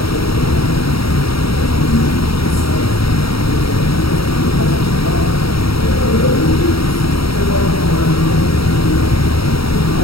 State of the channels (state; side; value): late; right; 0.75 ms